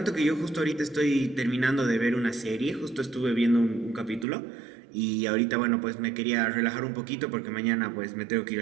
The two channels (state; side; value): drops out; left; at 4.2 s